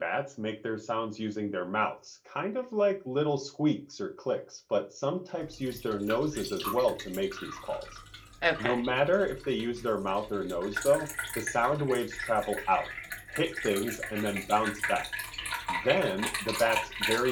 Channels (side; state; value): both; identical; correlation 1.00